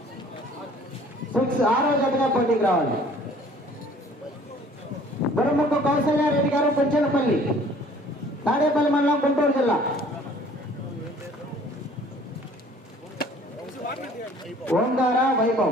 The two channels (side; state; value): both; normal; correlation 0.53